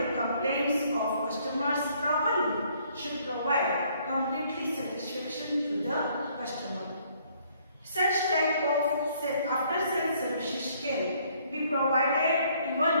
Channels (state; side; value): inverted; both; correlation -0.64